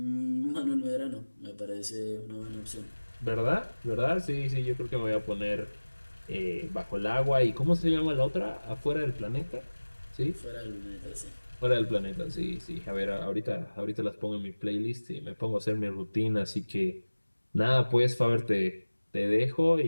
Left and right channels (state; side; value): inverted; both; correlation -1.00